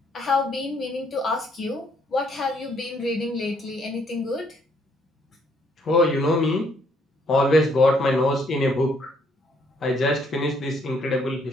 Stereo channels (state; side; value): normal; both; correlation 0.68